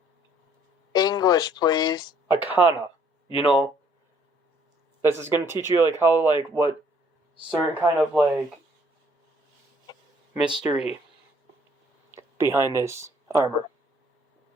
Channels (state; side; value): normal; both; correlation 0.62